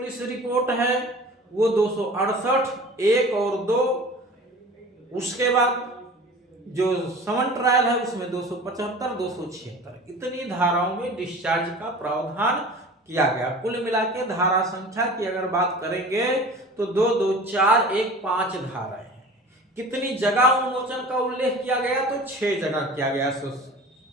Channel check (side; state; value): both; normal; correlation 0.40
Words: रिपोर्ट है वो 268 1 और 2, उसके बाद जो समन ट्रायल है उसमें 275 276 इतनी धाराओं में डिस्चार्ज का प्रावधान किया गया। कुल मिला के धारा संख्या की अगर बात करेंगे तो 2 2 4 1 5 धाराएं हैं। कितनी जगह उन्मोचन का उल्लेख किया गया? तो 6 जगह किया गया